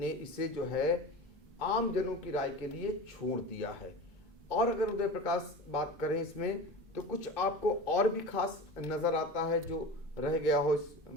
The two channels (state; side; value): normal; both; correlation 0.32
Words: इसे जो है आम जनों की राय के लिए छोड़ दिया है। और अगर उदय प्रकाश बात करें इसमें, तो कुछ आपको और भी खास नज़र आता है जो रह गया हो इस